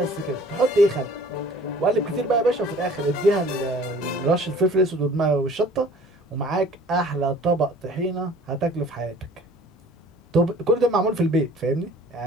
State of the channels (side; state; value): both; normal; correlation 0.50